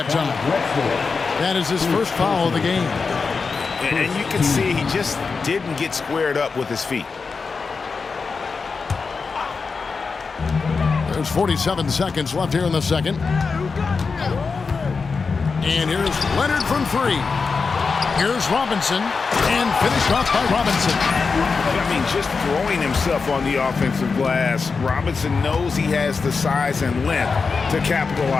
time. That is his first foul of the game. And you can see he just didn't get squared up with his feet. There's 47 seconds left here in the second. And here's Leonard from 3. Here's Robinson. And finished off by Robinson. I mean, just throwing himself on the offensive glass. Robinson knows he has the size and length to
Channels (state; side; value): quieter; right; 4.8 dB